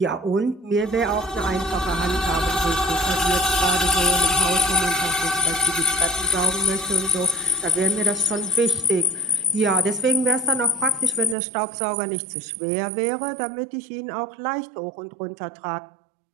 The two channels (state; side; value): drops out; left; at 11.4 s